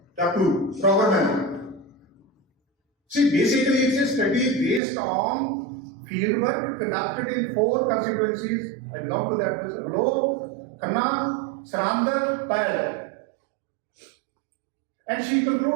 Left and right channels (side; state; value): left; drops out; at 4.8 s